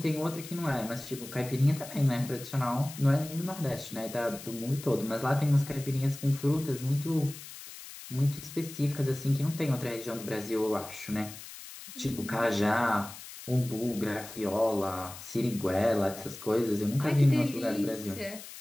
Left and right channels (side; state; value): left; noise; hiss, 14 dB below the sound